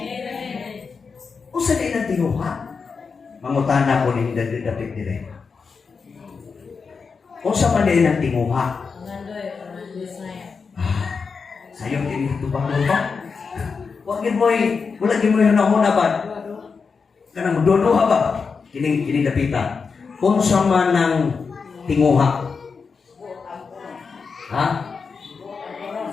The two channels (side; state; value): right; quieter; 5.2 dB